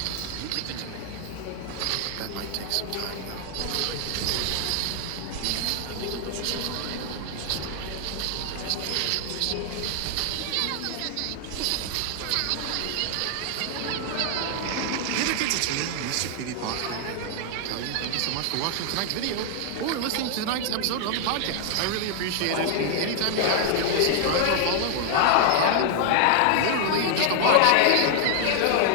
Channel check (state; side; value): different; both; correlation 0.00